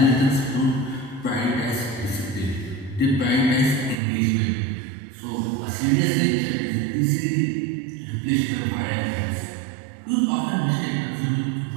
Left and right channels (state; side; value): drops out; left; at 4.0 s